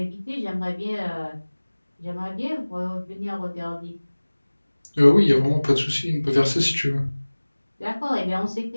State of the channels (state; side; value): inverted; both; correlation -1.00